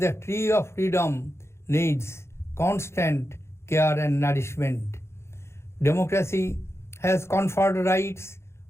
the tree of freedom needs constant care and nourishment. Democracy has conferred rights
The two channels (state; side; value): late; right; 0.13 ms